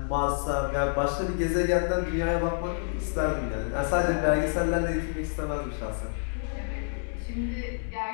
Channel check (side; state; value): right; silent; digital silence